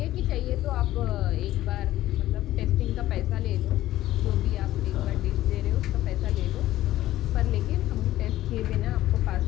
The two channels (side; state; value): right; quieter; 14.8 dB